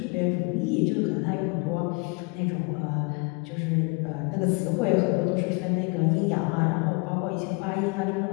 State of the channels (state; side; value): quieter; right; 31.2 dB